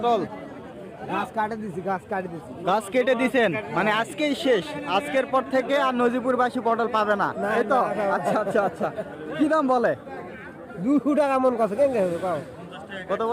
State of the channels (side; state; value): both; identical; correlation 1.00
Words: গাছ কাটে দিছি। গাছ কেটে দিছেন, মানে আজকেই শেষ। আজকের পর থেকে আর নজিপুরবাসী পটল পাবে না, এই তো? আচ্ছা। কি দাম বলে? 200 টাকা মন কত কেন কত